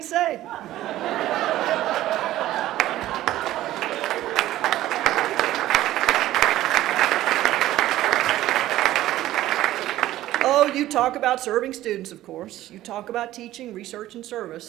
say. Oh, you talk about serving students, of course. You talk about teaching, research, and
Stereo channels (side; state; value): left; quieter; 14.6 dB